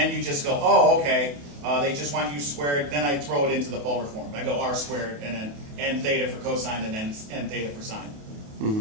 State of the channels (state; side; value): late; left; 28 ms